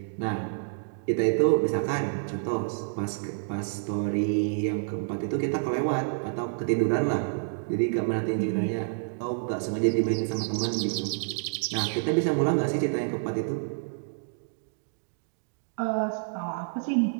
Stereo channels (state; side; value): silent; left; digital silence